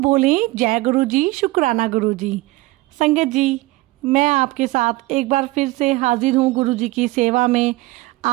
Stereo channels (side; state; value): left; quieter; 20.3 dB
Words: जय गुरु जी, शुक्राना गुरु जी। संगत जी मैं आपके साथ एक बार फिर से हाजिर हूँ गुरु जी की सेवा में,